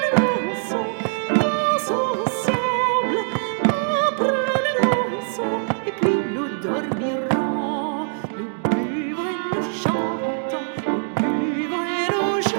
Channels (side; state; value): left; silent; 61 dB below the other